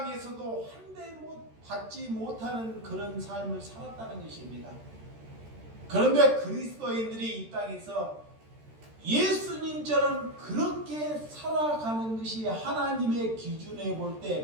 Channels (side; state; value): left; late; 13 ms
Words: 한 대 받지 못하는 그런 삶을 살았다는 것입니다. 그런데 그리스도인들이 이 땅에서 예수님처럼 그렇게 살아가는 것이 하나님의 기준에 볼